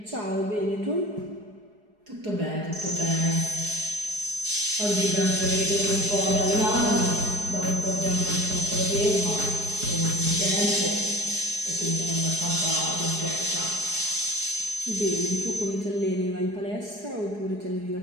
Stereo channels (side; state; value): left; late; 4.8 ms